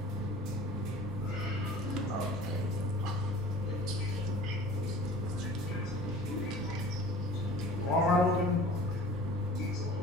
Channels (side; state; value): both; normal; correlation 0.44